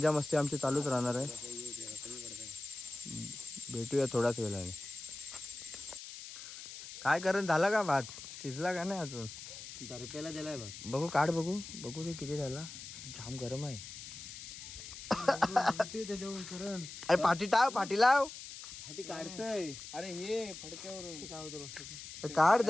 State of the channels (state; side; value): noise; left; hiss, 11 dB below the sound